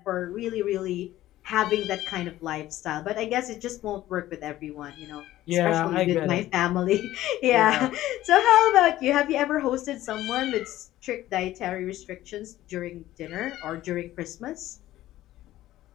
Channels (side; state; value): right; quieter; 14.8 dB